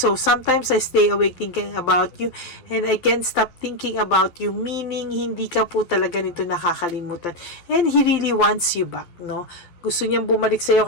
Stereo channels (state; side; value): late; right; 12 ms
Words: sometimes I stay awake thinking about you, and I can't stop thinking about you, meaning hindi ka po talaga nito nakakalimutan. And he really wants you back, no? Gusto niyang bumalik sa iyo